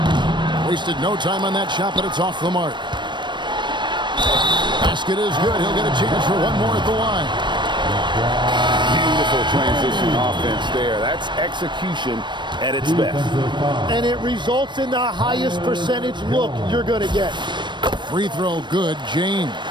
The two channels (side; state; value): left; late; 0.22 ms